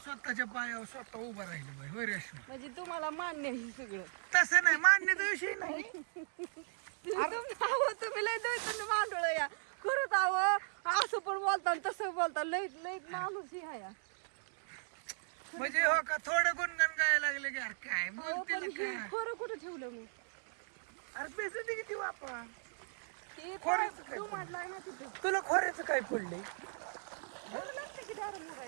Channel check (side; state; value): left; silent; digital silence